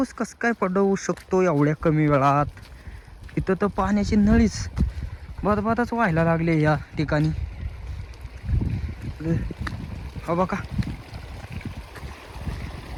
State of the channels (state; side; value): identical; both; correlation 1.00